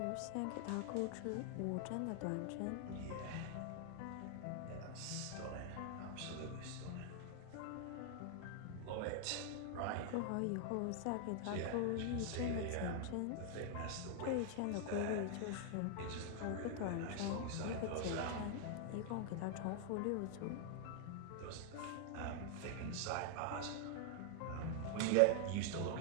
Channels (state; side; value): different; both; correlation 0.00